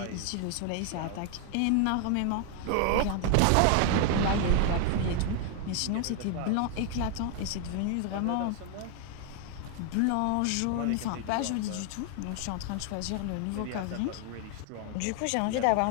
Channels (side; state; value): both; different; correlation 0.00